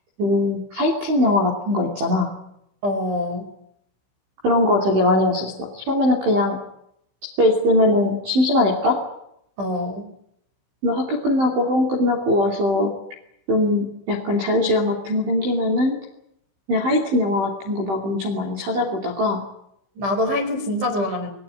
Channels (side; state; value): left; late; 15 ms